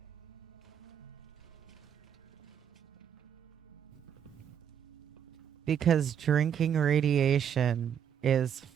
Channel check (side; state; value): left; quieter; 8.7 dB